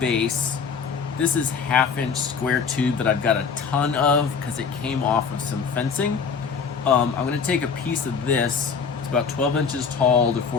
This is 1/2-inch square tube that I've got a ton of because it came off of some fencing. I'm gonna take a piece of this, it's about 12 inches tall to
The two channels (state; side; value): quieter; right; 5.9 dB